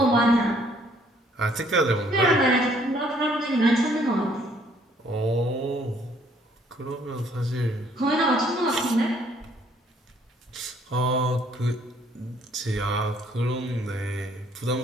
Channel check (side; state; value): both; normal; correlation 0.64